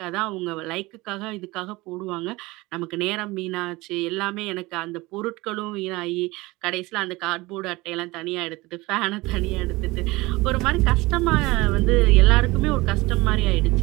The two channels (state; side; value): quieter; left; 21.6 dB